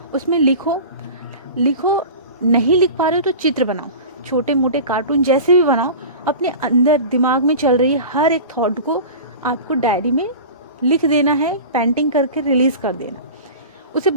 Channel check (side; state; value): both; inverted; correlation -0.34